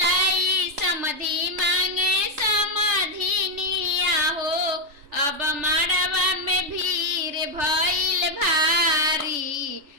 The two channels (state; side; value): late; left; 3.4 ms